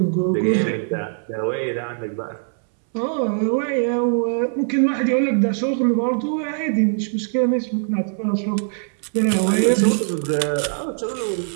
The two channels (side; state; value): left; silent; 65 dB below the other